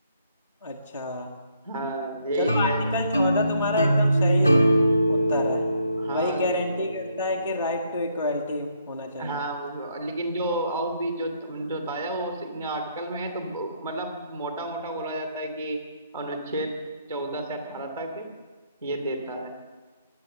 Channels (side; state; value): both; inverted; correlation -0.72